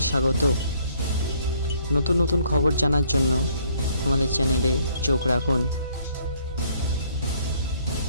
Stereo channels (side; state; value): both; inverted; correlation -0.64